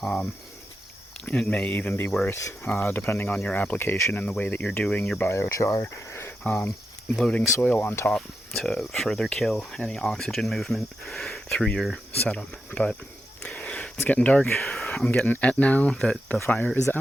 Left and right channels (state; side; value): normal; both; correlation 0.87